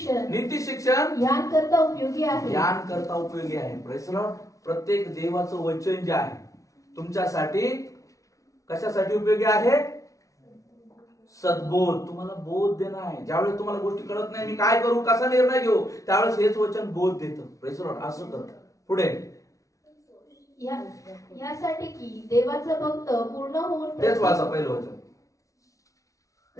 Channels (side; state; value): right; late; 0.16 ms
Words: शिक्षण ज्ञान करता उपयोगी आहे. ज्ञान करता उपयोगी आहे. Praise the Lord. प्रत्येक देवाचं वचन जे आहे तुमच्यासाठी कशासाठी उपयोगी आहे? सद्बोध, तुम्हाला बोध देणं आहे. ज्यावेळेस तुम्हाला गोष्टी कळत नाही, मी काय करू, कसा निर्णय घेऊ, त्यावेळेस हेच वचन बोध देतं. Praise the Lord. असं करतं. पुढे यासाठी की देवाचं भक्त पूर्ण होऊन, तेच वाचा पहिलं वचन.